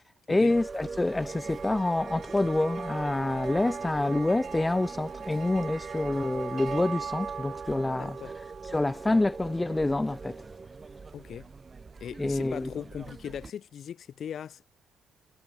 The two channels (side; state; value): both; normal; correlation 0.98